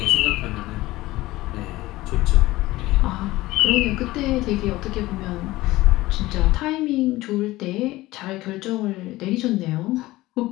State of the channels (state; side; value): quieter; right; 18.2 dB